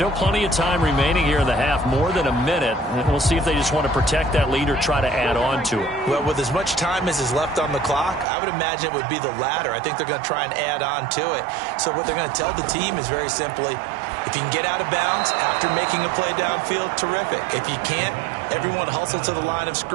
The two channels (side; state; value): left; drops out; at 8.2 s